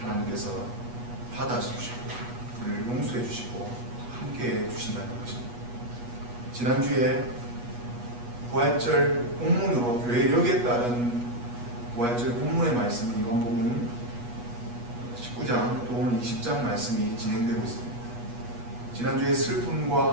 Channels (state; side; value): late; left; 8.3 ms